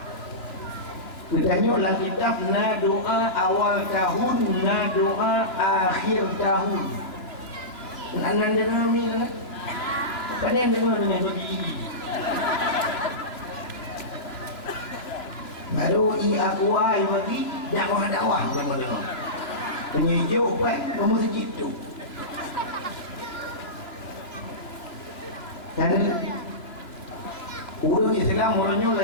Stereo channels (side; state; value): right; late; 2.9 ms